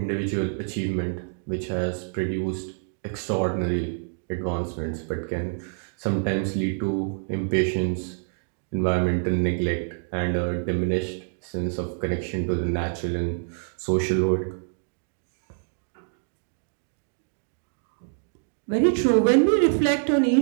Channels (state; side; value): silent; left; digital silence